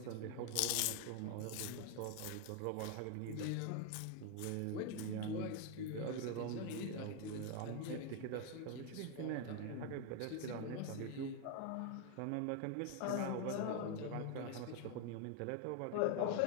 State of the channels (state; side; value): different; both; correlation 0.01